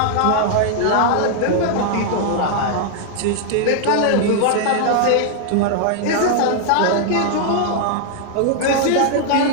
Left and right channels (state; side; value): different; both; correlation 0.00